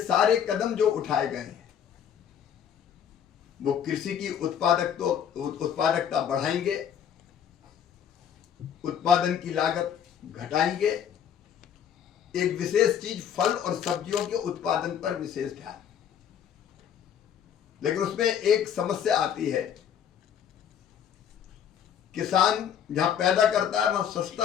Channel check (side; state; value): right; quieter; 8.7 dB